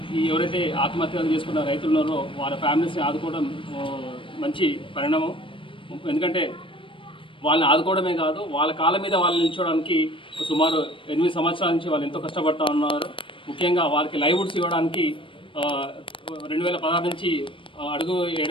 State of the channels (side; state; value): right; late; 0.25 ms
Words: ఎవరైతే ఆత్మహత్యలు చేసుకున్న రైతులు ఉన్నారో వాళ్ళ ఫ్యామిలీస్ని ఆదుకోవడం మంచి పరిణామం. ఎందుకంటే వాళ్ళని ఆదుకోవడమే కాదు, వాళ్ళ కాళ్ళ మీద వాళ్ళని నిల్చోవడానికి సుమారు 8 సంవత్సరాల నుంచి వాళ్ళు ఎంతో కష్టపడుతూ ఉన్నారు. ముఖ్యంగా వాళ్ళకి లైవ్వుడ్స్ ఇవ్వడానికి 2016 నుంచి అడుగు